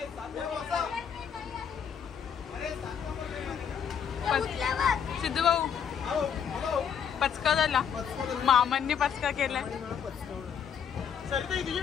सिद्धू भाऊ पचका झाला. मामांनी पचका केलाय. सरिता तुझी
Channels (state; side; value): quieter; right; 7.8 dB